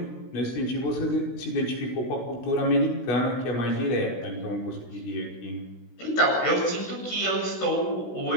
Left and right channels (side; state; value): right; late; 16 ms